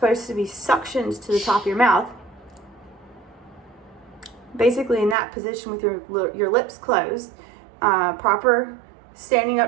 to be suctioned to the top of your mouth, basically in that position with your lips closed, proper standing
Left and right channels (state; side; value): drops out; left; at 5.2 s